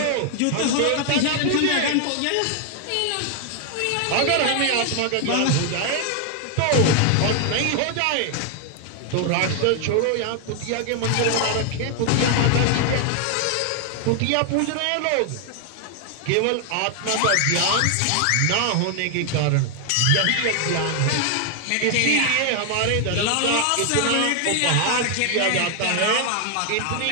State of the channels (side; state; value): both; different; correlation 0.00